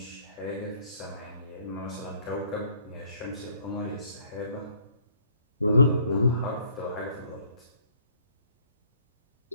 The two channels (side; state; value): both; inverted; correlation -0.61